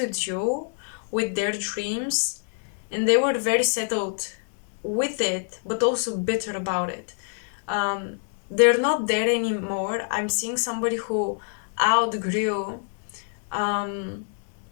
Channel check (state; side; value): silent; right; digital silence